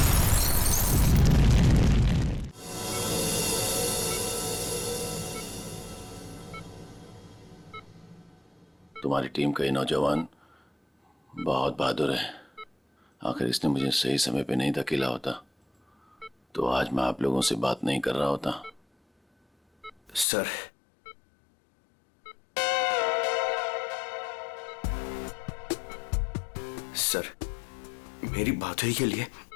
तुम्हारी टीम का ये नौजवान बहुत बहादुर है। आखिर इसने मुझे सही समय पे नहीं धकेला होता तो आज मैं आप लोगों से बात नहीं कर रहा होता। सर, सर, मेरी बहादुरी के लिए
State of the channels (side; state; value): right; drops out; at 20.2 s